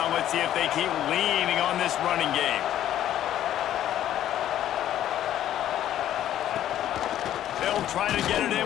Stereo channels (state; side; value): quieter; right; 11.8 dB